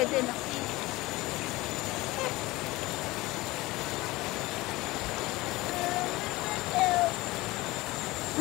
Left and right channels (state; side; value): quieter; right; 20.1 dB